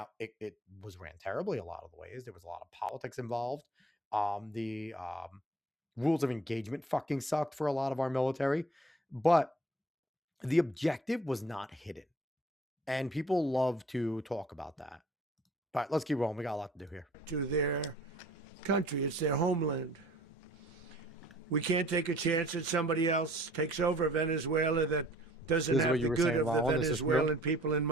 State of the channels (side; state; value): both; normal; correlation 0.53